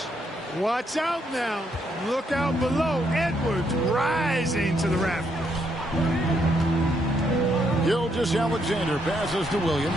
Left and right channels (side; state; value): both; normal; correlation 0.75